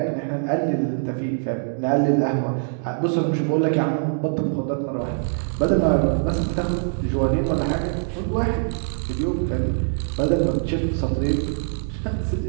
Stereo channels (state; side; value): silent; left; digital silence